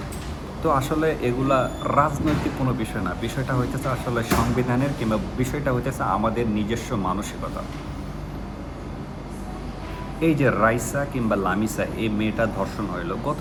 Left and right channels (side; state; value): both; identical; correlation 1.00